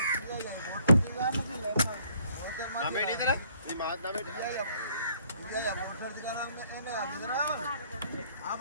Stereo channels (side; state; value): both; inverted; correlation -0.63